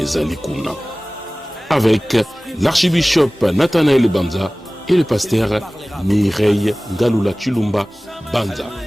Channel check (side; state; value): both; normal; correlation 0.98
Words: zali kuna. Avec l'archibishop Nathanaël Banza et le pasteur Mireille Ngalula Chilumba Banza.